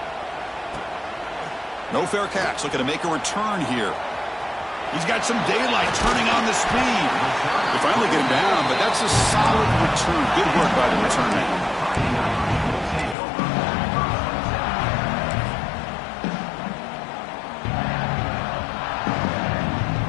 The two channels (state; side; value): drops out; right; at 13.2 s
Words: No fair catch. Looking to make a return here. He's got some daylight, turning on the speed. They finally get him down, but that's a solid return. Good work by the return man.